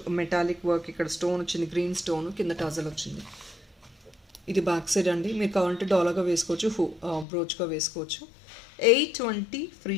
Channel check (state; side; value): drops out; right; at 7.2 s